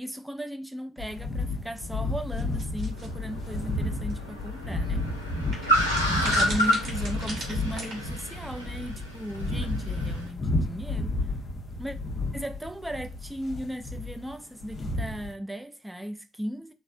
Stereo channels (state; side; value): normal; both; correlation 0.59